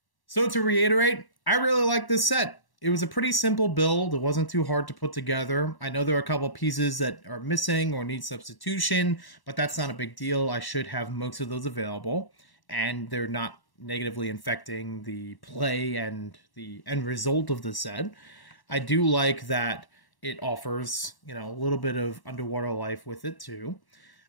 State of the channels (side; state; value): right; late; 1.1 ms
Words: So to reiterate, I really like this set. It was a pretty simple build. It wasn't too hard to put together. I know there are a couple pieces that are missing or need substitution, but that's not a big deal. I should have most of those available, and they're not negatively infecting the play and the end result of the set. I do like that it offers, you know, a little bit of underwater life with it too.